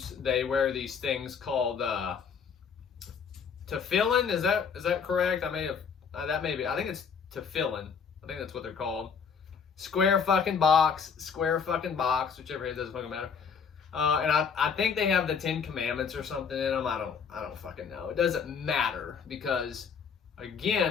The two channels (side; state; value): right; quieter; 6.4 dB